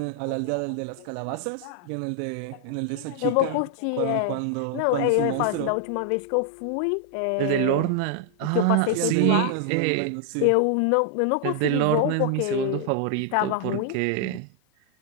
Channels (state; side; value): different; both; correlation 0.00